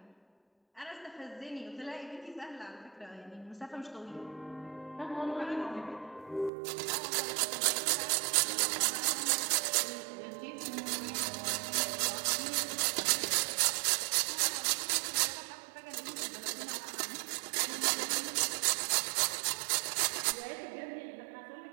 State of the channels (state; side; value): drops out; left; at 6.5 s